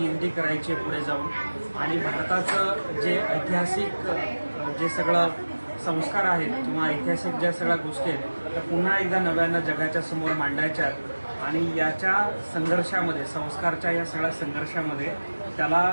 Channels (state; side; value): inverted; both; correlation -1.00